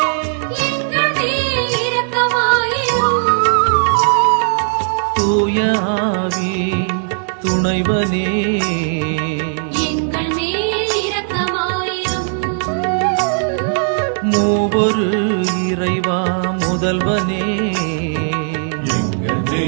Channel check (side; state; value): left; silent; 68 dB below the other